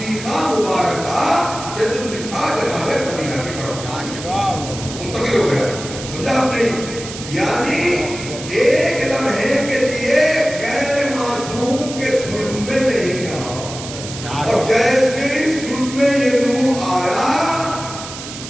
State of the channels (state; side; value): noise; right; hiss, 11 dB below the sound